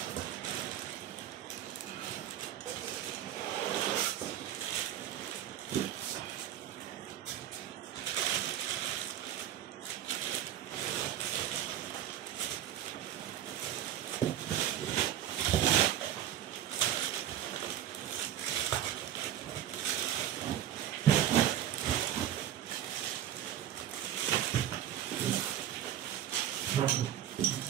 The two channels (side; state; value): left; quieter; 11.2 dB